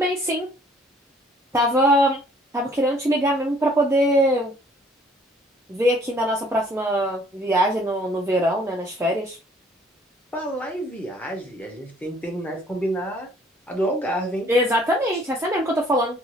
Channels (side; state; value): both; normal; correlation 0.59